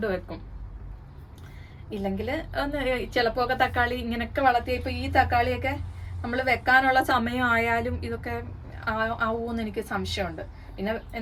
ഇല്ലെങ്കിൽ ചിലപ്പോൾ ഒക്കെ തക്കാളി ഇങ്ങനെയൊക്കെ വളർത്തി. ഇപ്പോൾ ഈ തക്കാളിയൊക്കെ നമ്മൾ വെക്കാനുള്ള സമയമായാലും ഇതൊക്കെ ആവുമെന്ന് എനിക്ക് സംശയമുണ്ട്. പിന്നെ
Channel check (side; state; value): both; identical; correlation 1.00